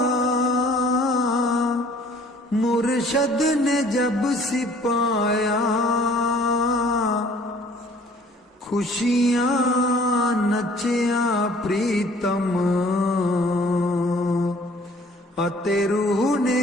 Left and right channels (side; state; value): both; normal; correlation 0.55